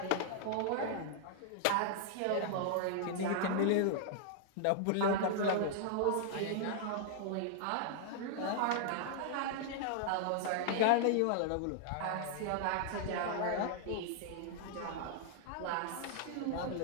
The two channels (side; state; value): both; different; correlation -0.01